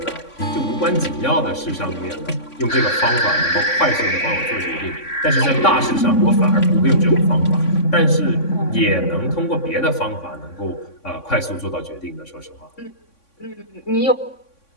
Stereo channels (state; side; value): late; right; 3.6 ms